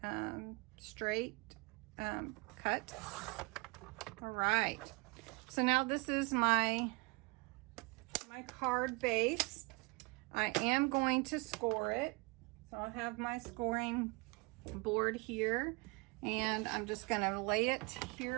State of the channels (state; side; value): quieter; left; 28.2 dB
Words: straight cut. All right, so now this is my card base. I am going to score it. So I'll have my scoring board here, and I'm just going to lay it